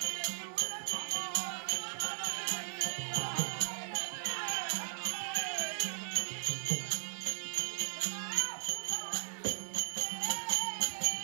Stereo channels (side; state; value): left; silent; digital silence